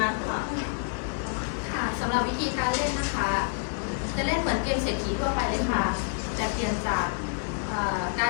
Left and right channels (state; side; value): silent; right; 59 dB below the other